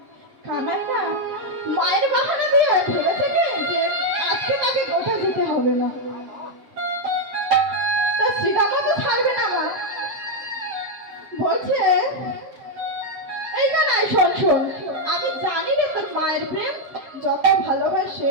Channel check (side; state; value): left; late; 7.3 ms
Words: কানাই না মায়ের বাহানা দিয়ে ভেবেছে কি যে আজকে তাকে গোঠা যেতে হবে না, তা শ্রীরামও তো ছাড়বে না। মা বলছে, এই কানাই শোন শোন, আমি জানি রে তোর মায়ের প্রেম যত